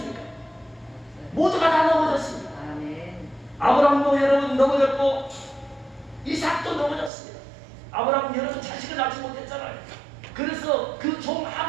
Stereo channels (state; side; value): drops out; left; at 7.1 s